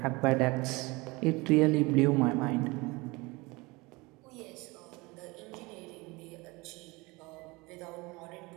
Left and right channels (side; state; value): left; quieter; 24.3 dB